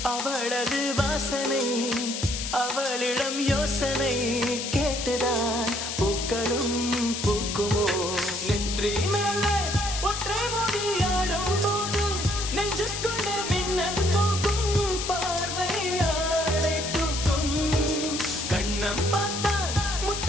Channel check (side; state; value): left; noise; hiss, 4 dB below the sound